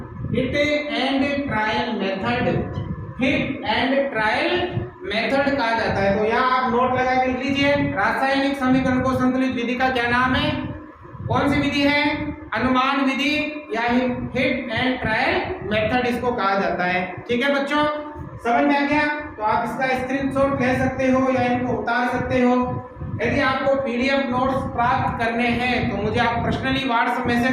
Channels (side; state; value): both; identical; correlation 1.00